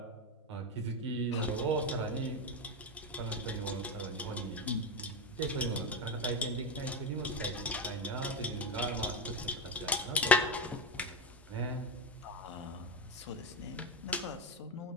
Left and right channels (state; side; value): normal; both; correlation 0.13